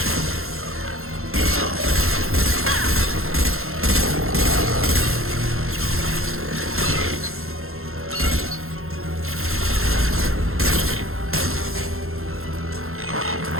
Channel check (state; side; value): late; left; 0.62 ms